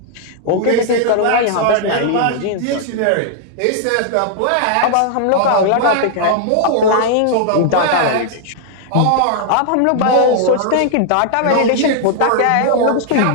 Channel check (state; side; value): different; both; correlation -0.01